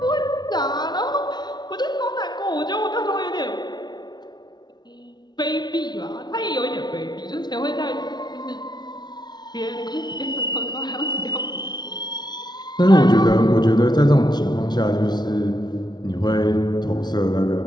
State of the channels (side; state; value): right; late; 0.20 ms